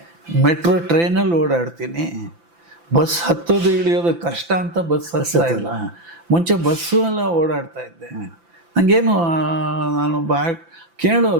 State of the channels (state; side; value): late; left; 5.9 ms